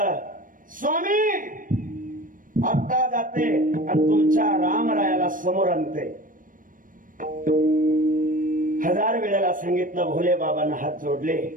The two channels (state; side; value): late; left; 0.39 ms